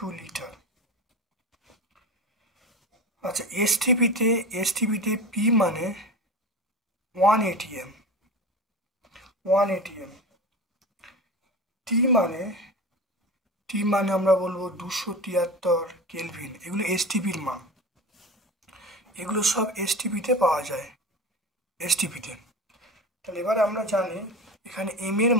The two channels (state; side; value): normal; both; correlation 0.30